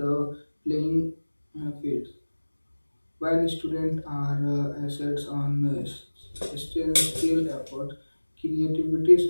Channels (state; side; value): inverted; both; correlation -1.00